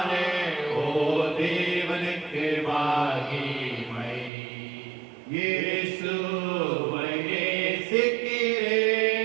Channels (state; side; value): drops out; left; at 4.3 s